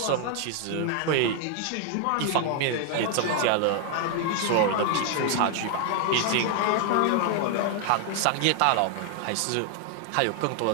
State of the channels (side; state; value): both; different; correlation 0.00